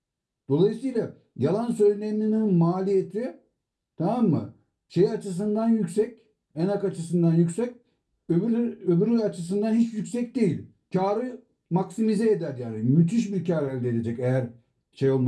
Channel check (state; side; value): identical; both; correlation 1.00